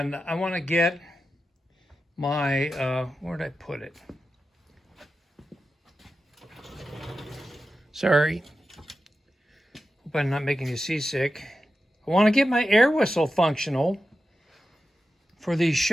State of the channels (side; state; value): both; normal; correlation 0.91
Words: I want to get my, where'd I put it? Sorry. Hope I'm not making you seasick. I want to get my air whistle functional for these